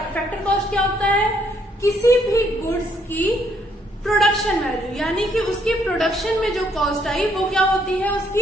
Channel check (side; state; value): both; normal; correlation 0.70